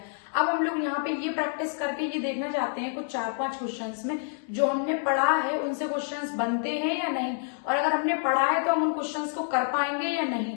अब हम लोग यहाँ पे ये प्रैक्टिस करके ये देखना चाहते हैं कुछ 4-5 क्वेश्चंस में जो हमने पढ़ा है उनसे क्वेश्चंस बनते हैं या नहीं, और अगर हमने पढ़ा है तो हम उन क्वेश्चंस को कर पाएंगे या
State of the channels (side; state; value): right; silent; 59 dB below the other